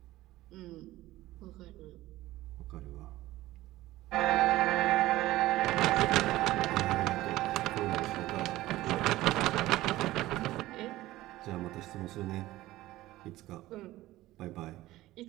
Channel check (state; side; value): quieter; left; 16.7 dB